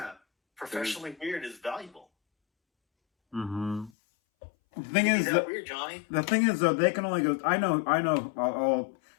Professionally weird is valuable. Mm-hmm. The thing Is is that that weird, Johnny? the thing is though, they can only go. I know.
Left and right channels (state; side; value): drops out; right; at 3.9 s